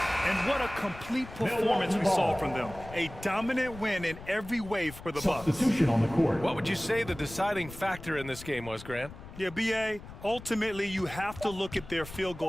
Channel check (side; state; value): left; noise; rumble, 15 dB below the sound